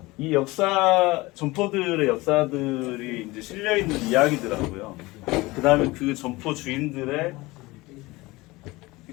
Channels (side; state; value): right; quieter; 21.3 dB